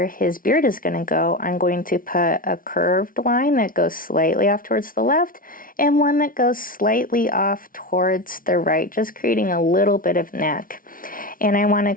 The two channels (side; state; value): right; late; 0.40 ms